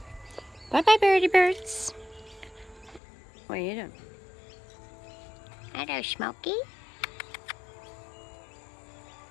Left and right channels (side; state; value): right; drops out; at 3.0 s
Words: Bye-bye, birdie birds. What are you doing? Hello, Smokey.